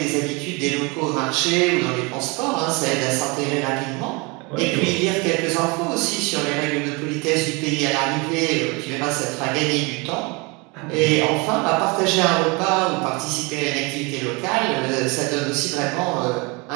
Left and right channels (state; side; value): quieter; left; 28.1 dB